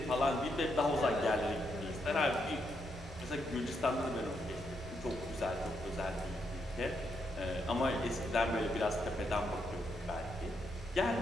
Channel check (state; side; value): normal; both; correlation 0.79